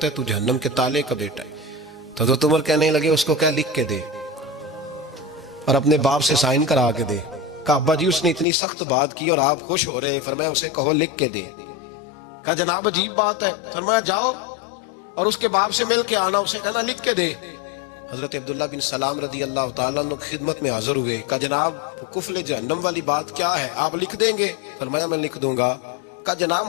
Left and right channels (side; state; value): right; drops out; at 8.5 s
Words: ہے تو جہنم کے تالے کا بیٹا ہے۔ تو حضرت عمر کہنے لگے اس کو کیا لکھ کے دے اور اپنے باپ سے سائن کرا کے دے۔ کہا ابا جی اس نے اتنی سخت بات کی اور آپ خوش ہو رہے ہیں، فرمایا اسے کہو لکھ کے دے۔ کہا جناب عجیب بات ہے، فرمایا جاؤ اور اس کے باپ سے مل کے آنا، اسے کہنا لکھ کے دے۔ حضرت عبداللہ بن سلام رضی اللہ تعالیٰ عنہ کی خدمت میں حاضر ہوئے۔ کہا جناب کفل جہنم والی بات کیا ہے، آپ لکھ دیں گے؟ فرمایا میں لکھ دوں گا۔ کہا جناب